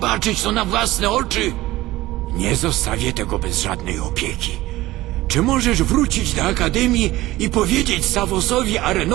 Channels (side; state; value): left; quieter; 17.5 dB